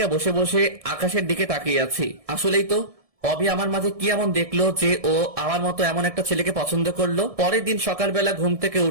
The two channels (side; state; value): left; late; 1.6 ms